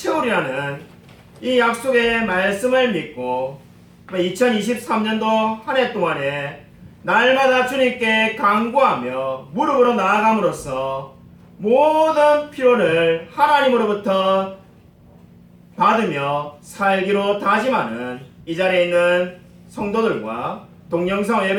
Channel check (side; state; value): both; identical; correlation 1.00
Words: 이 약속의 말씀을 믿고 2023년도 한 해 동안에 날마다 주님께 간구하며 무릎으로 나아감으로써 모든 필요를 하나님으로부터 받으며 살기로 다짐하는 이 자리에 있는 성도들과 동영상